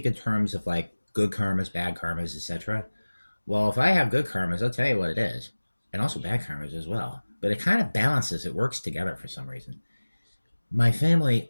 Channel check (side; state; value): both; inverted; correlation -1.00